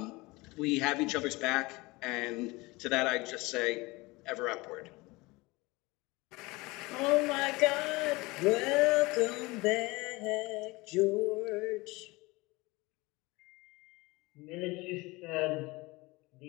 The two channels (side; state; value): right; quieter; 23.0 dB